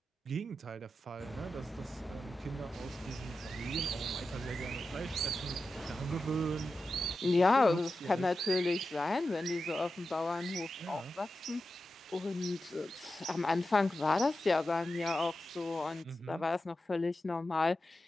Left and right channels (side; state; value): both; normal; correlation 0.92